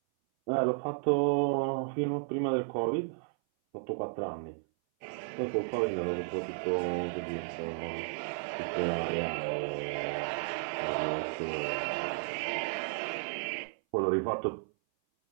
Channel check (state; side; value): silent; left; 56 dB below the other